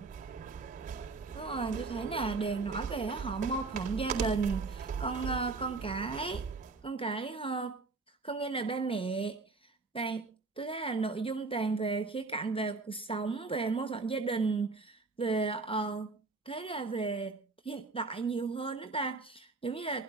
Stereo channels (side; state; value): left; quieter; 3.9 dB